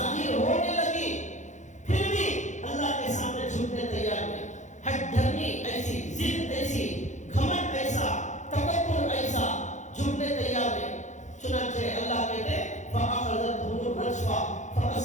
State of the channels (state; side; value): late; right; 0.35 ms